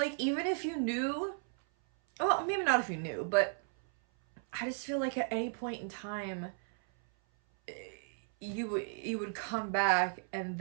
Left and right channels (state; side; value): silent; left; 55 dB below the other